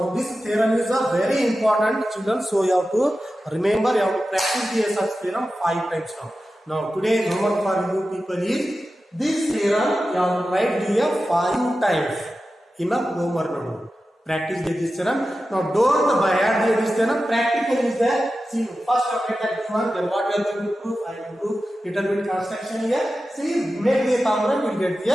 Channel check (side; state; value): both; normal; correlation 0.93